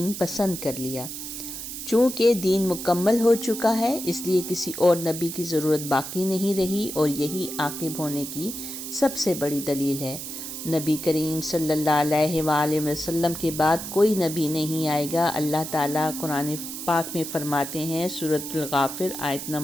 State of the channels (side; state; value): right; noise; hiss, 8 dB below the sound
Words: پسند کر لیا۔ چونکہ دین مکمل ہو چکا ہے، اس لیے کسی اور نبی کی ضرورت باقی نہیں رہی، اور یہی عاقب ہونے کی سب سے بڑی دلیل ہے۔ نبی کریم صلی اللہ علیہ وآلہ وسلم کے بعد کوئی نبی نہیں آئے گا۔ اللہ تعالیٰ قرآن پاک میں فرماتے ہیں سورۃ الغافر آیت